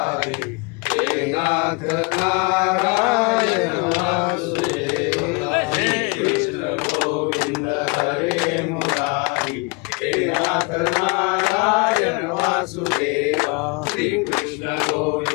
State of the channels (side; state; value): right; quieter; 29.6 dB